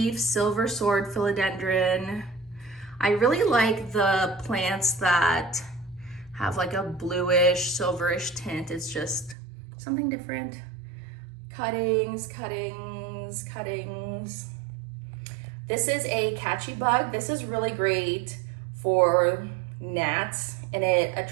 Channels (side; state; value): left; drops out; at 9.3 s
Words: silver sword philodendron. I really like the plants that have like a bluish, silverish tint. It's just something different. Cuttings, cuttings, cuttings. This is a catchy bug. This is really great for gnats, and it